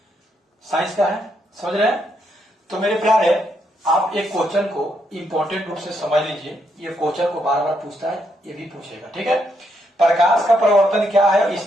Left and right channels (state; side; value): normal; both; correlation 0.77